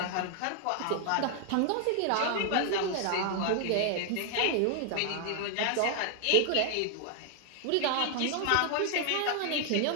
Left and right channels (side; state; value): both; different; correlation 0.00